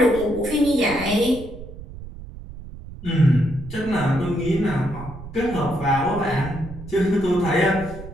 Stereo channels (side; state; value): right; noise; rumble, 13 dB below the sound